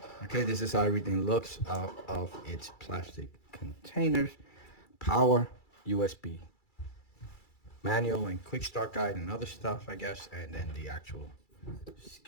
Okay, this is how everything looks out of its plastic containers. Power, USB, manual and quick start guide and other stuff, I guess, and then the actual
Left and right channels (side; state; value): right; late; 2.3 ms